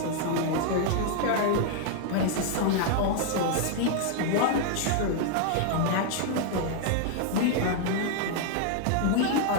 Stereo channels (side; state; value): both; different; correlation 0.00